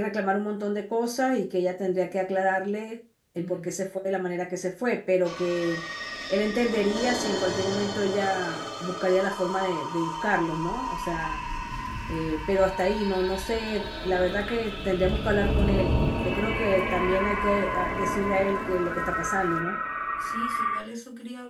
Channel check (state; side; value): identical; both; correlation 1.00